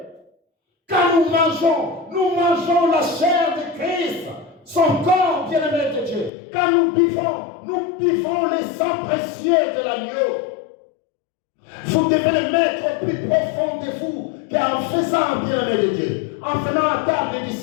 Quand nous mangeons la chair de Christ, son corps, bien-aimé de Dieu. Quand nous buvons le sang précieux de l'agneau. Vous devez le mettre au plus profond de vous, car en faisant, bien-aimé de Dieu, en venant à table du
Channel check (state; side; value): drops out; right; at 6.3 s